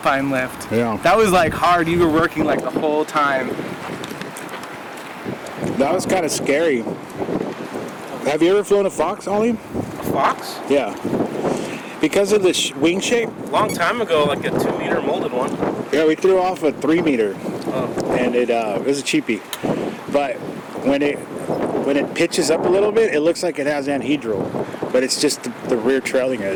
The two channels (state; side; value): identical; both; correlation 1.00